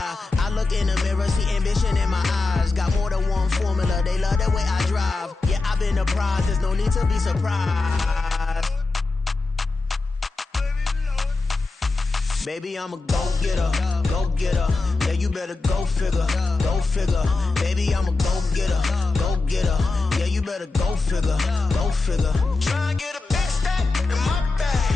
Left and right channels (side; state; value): right; quieter; 3.6 dB